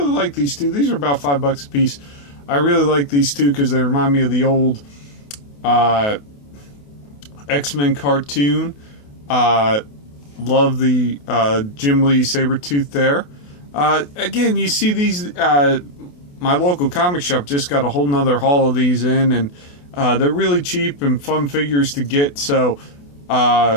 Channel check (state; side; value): late; right; 28 ms